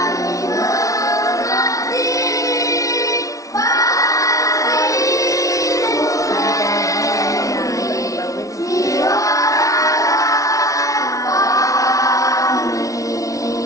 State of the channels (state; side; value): late; right; 0.16 ms